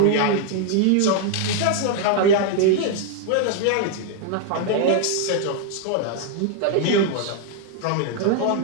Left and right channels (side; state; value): both; different; correlation 0.00